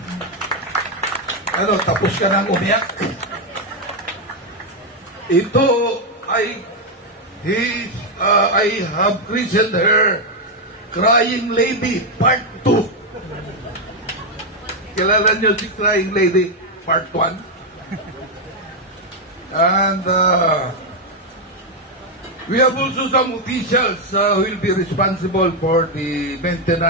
Tapos ka nang umiyak. Ito ay, I have christened her Crying Lady Part 2. Kilala niyo si Crying Lady Part 1? And we have also some officials who will be responsible for the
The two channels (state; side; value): normal; both; correlation 0.02